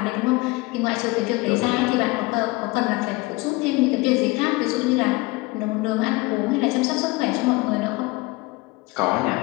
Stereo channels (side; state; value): right; quieter; 23.1 dB